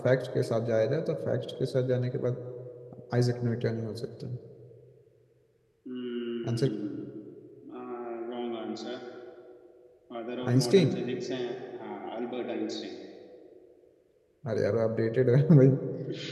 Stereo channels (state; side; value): identical; both; correlation 1.00